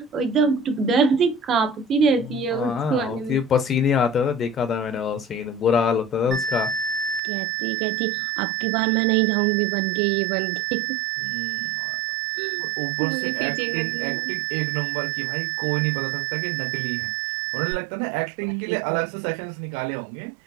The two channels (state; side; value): drops out; left; at 7.2 s